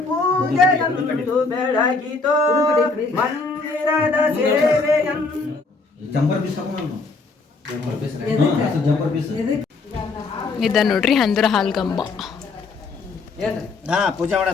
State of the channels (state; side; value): quieter; right; 4.0 dB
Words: ಪೂಜೆಯಂದು ಬೆಳಗಿತು ಮಂದಿರದ ಸೇವೆಯಂದು ಇದ ನೋಡ್ರಿ ಹಂದ್ರ ಹಾಲ್ಗಂಬ. ಪೂಜೆ